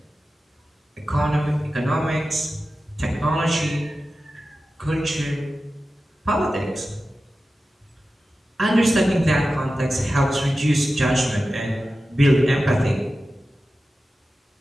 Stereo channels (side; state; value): both; normal; correlation 0.94